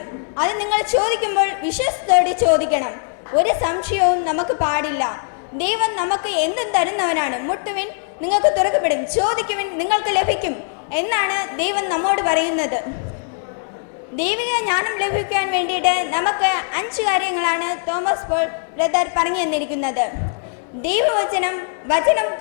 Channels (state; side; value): silent; right; 65 dB below the other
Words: അത് നിങ്ങൾ ചോദിക്കുമ്പോൾ വിശ്വാസത്തോടെ ചോദിക്കണം. ഒരു സംശയവും നമുക്ക് പാടില്ല. ദൈവം നമുക്ക് എന്തും തരുന്നവനാണ്. മുട്ടുവിൻ, നിങ്ങൾക്ക് തുറക്കപ്പെടും. ചോദിക്കുവിൻ, നിങ്ങൾക്ക് ലഭിക്കും എന്നാണ് ദൈവം നമ്മോട് പറയുന്നത്. ദൈവിക ജ്ഞാനം ലഭിക്കാൻ വേണ്ടിയിട്ട് നമുക്ക് 5 കാര്യങ്ങളാണ് തോമസ് പോൾ ബ്രദർ പറഞ്ഞു തന്നിരിക്കുന്നത്. വചനം